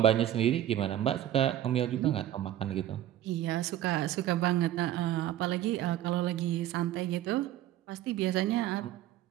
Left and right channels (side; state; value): left; quieter; 12.4 dB